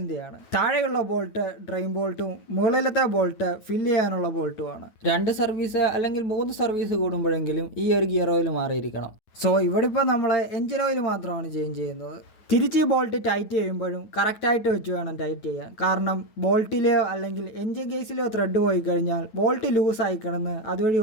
താഴെയുള്ള ബോൾട്ട് ഡ്രെയിൻ ബോൾട്ടും മുകളിലത്തെ ബോൾട്ട് ഫില്ല് ചെയ്യാനുള്ള ബോൾട്ടുമാണ്. 2 സർവീസ് അല്ലെങ്കിൽ 3 സർവീസ് കൂടുമ്പോഴെങ്കിലും ഈ ഒരു ഗിയർ ഓയിൽ മാറിയിരിക്കണം. സോ ഇവിടെ ഇപ്പോൾ നമ്മൾ എഞ്ചിൻ ഓയിൽ മാത്രമാണ് ചേഞ്ച് ചെയ്യുന്നത്. തിരിച്ച് ഈ ബോൾട്ട് ടൈറ്റ് ചെയ്യുമ്പോഴും കറക്റ്റായിട്ട് വെച്ച് വേണം ടൈറ്റ് ചെയ്യാൻ. കാരണം ബോൾട്ടിലെയോ അല്ലെങ്കിൽ എഞ്ചിൻ കേസിലെയോ ത്രെഡ് പോയി കഴിഞ്ഞാൽ ബോൾട്ട് ലൂസായി കിടന്ന് അതുവഴി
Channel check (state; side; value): late; right; 9.2 ms